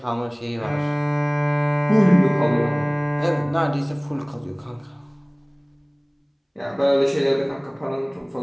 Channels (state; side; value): identical; both; correlation 1.00